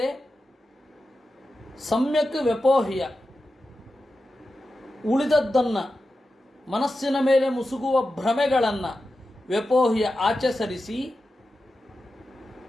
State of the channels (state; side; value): normal; both; correlation 0.91